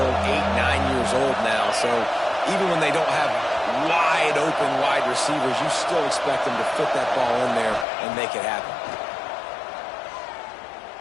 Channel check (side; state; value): right; drops out; at 7.9 s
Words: 8, 9 years old now. So even when they don't have wide receivers, you still expect them to fit that ball in there and make it happen.